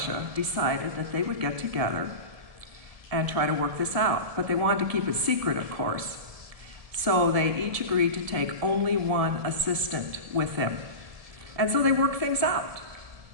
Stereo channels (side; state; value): left; late; 1.7 ms